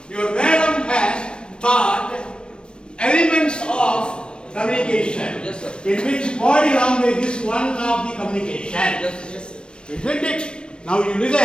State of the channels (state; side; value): late; right; 0.055 ms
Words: your madam has taught elements of communication, yes, sir. in which body language is one of the communication. Yes. Isn't it? Now you listen.